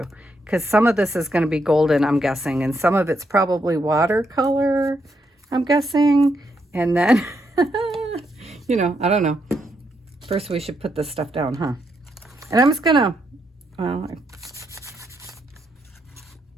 because some of this is going to be golden, I'm guessing, and some of it's probably watercolor, I'm guessing. And then, you know, I don't know. First, we should put this stuff down, huh? And I'm just gonna, well,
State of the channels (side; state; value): both; normal; correlation 0.79